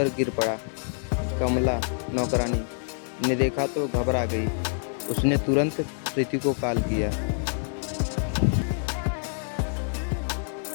गिर पड़ा। कमला नौकरानी ने देखा तो घबरा गई। उसने तुरंत प्रीति को कॉल किया।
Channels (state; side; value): silent; right; 60 dB below the other